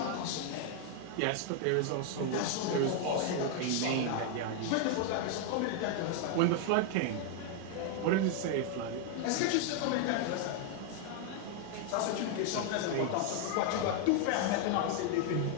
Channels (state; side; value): different; both; correlation 0.00